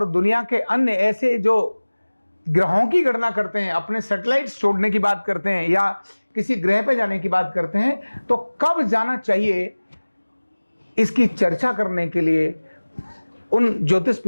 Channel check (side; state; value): both; inverted; correlation -1.00